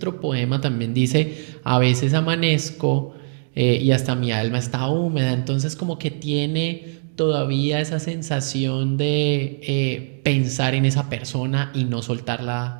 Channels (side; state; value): left; silent; 60 dB below the other